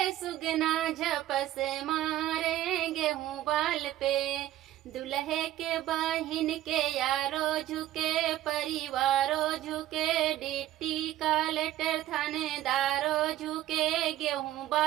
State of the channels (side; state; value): left; quieter; 13.7 dB